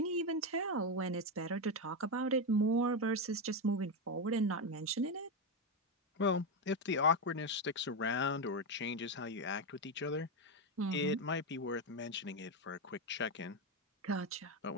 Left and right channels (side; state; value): both; normal; correlation 0.09